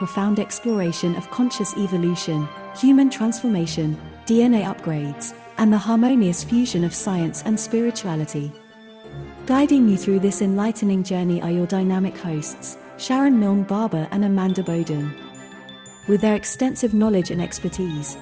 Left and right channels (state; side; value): identical; both; correlation 1.00